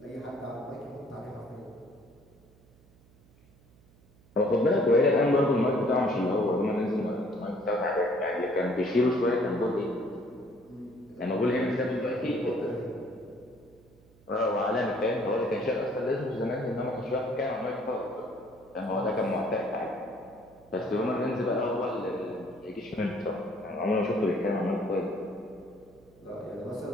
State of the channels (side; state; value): right; noise; hum, 28 dB below the sound